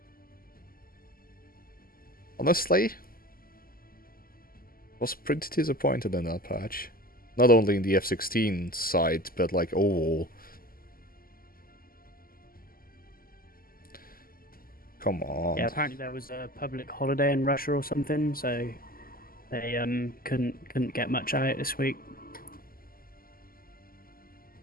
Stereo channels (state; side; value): late; right; 0.42 ms